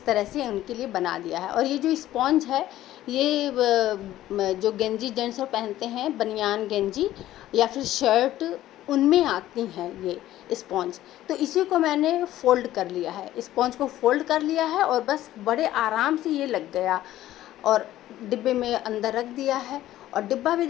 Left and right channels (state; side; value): quieter; right; 14.0 dB